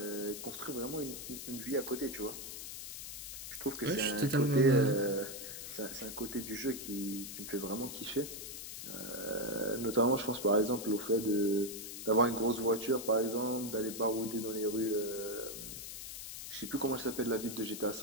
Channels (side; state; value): left; noise; hiss, 8 dB below the sound